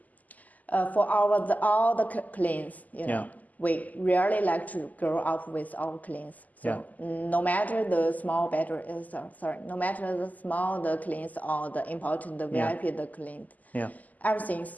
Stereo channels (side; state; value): right; late; 0.079 ms